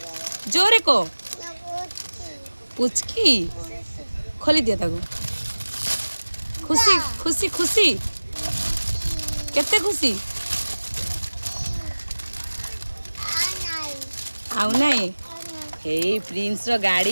जोरे को पुचकी खोली दिया ताको खुशी खुशी खुशी केते खुशी आउ नाही हे प्रिंस रो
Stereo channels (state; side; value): inverted; both; correlation -1.00